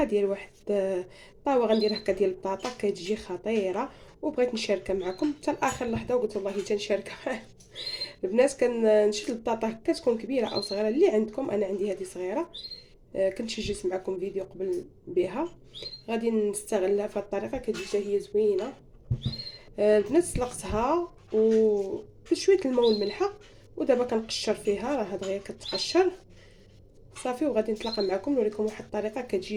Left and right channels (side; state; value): both; identical; correlation 1.00